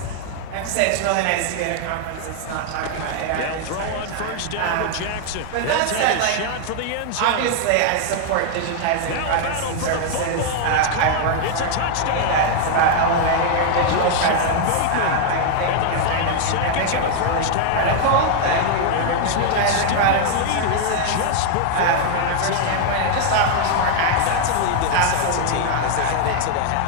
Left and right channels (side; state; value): both; different; correlation 0.00